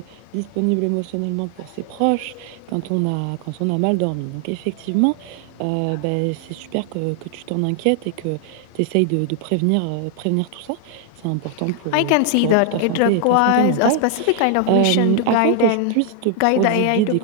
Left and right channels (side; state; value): both; different; correlation 0.00